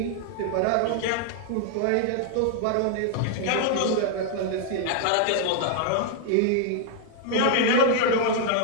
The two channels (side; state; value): both; different; correlation 0.00